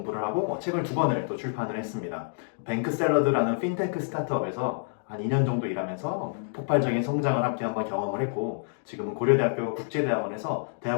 하고 책을 2권을 또 출판을 했습니다. 뱅크샐러드라는 핀테크 스타트업에서 한 2년 정도 일하면서 폭발적인 성장을 함께 한번 경험을 했고, 지금은 고려대학교 국제대학원에서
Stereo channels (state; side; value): silent; right; digital silence